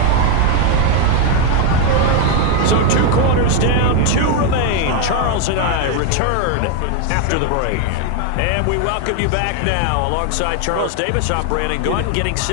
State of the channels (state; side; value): different; both; correlation 0.01